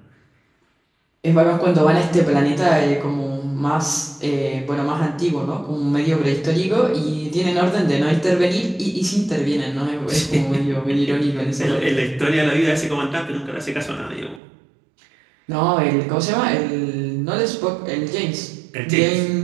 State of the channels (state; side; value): drops out; left; at 14.4 s